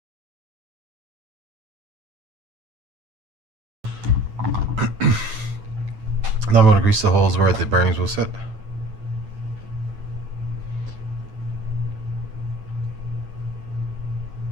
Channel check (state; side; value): late; left; 9.3 ms